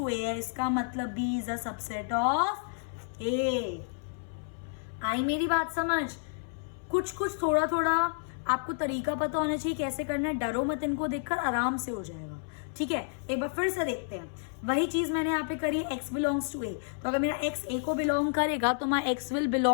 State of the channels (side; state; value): right; silent; 57 dB below the other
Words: a है, इसका मतलब b is a subset of a। आई मेरी बात समझ? कुछ कुछ थोड़ा थोड़ा आपको तरीका पता होना चाहिए कैसे करना है, डरो मत, इनको देखकर आराम से हो जाएगा, ठीक है। एक बार फिर से देखते हैं, वही चीज मैंने यहाँ पे करी, x बिलोंग्स टू a, तो अगर मेरा x a को बिलोंग करेगा तो my x will